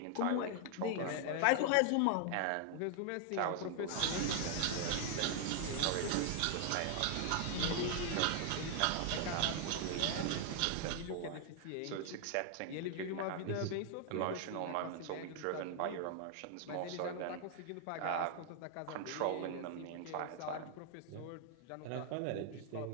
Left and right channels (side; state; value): both; different; correlation 0.00